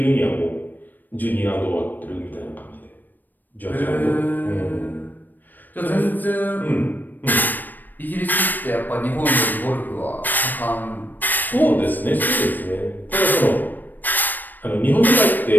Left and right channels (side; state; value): right; late; 0.089 ms